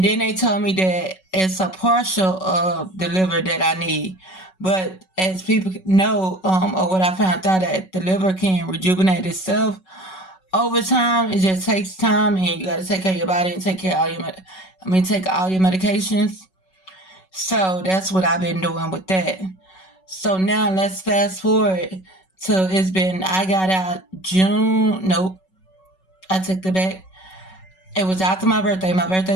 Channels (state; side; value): late; right; 5.3 ms